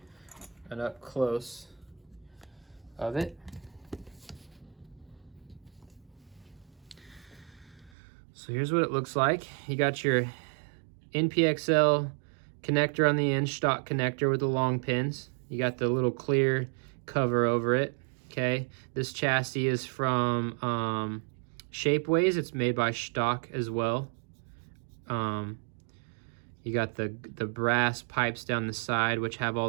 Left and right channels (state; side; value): drops out; left; at 7.9 s